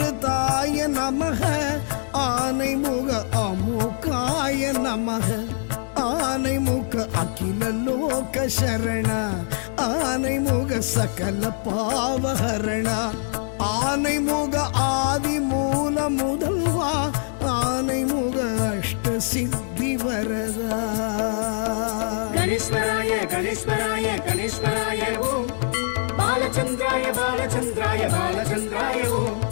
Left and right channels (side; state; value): right; silent; digital silence